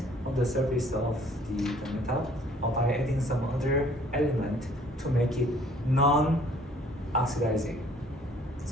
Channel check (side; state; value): both; normal; correlation 0.57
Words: on the surface of the metal, or by adding some other element to make it non-oxidizing.